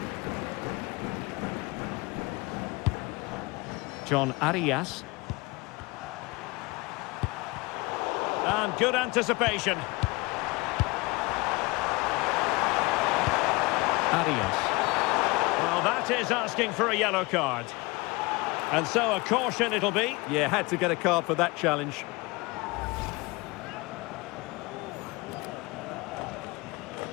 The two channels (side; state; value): right; quieter; 24.5 dB